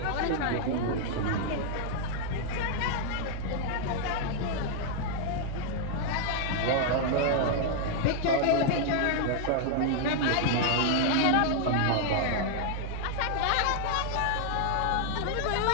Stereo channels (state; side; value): different; both; correlation -0.01